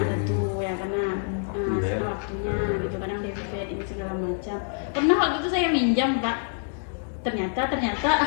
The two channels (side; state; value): right; silent; digital silence